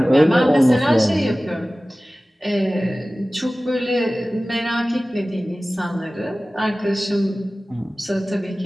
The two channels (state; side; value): normal; both; correlation 0.97